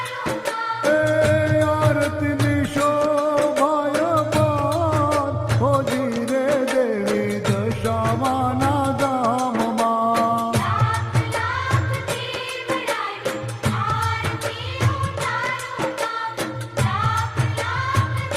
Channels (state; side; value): identical; both; correlation 1.00